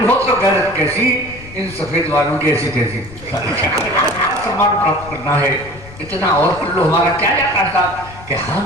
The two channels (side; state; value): left; noise; rumble, 17 dB below the sound